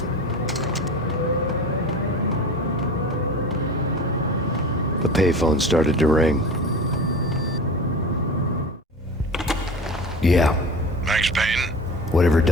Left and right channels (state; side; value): normal; both; correlation 0.34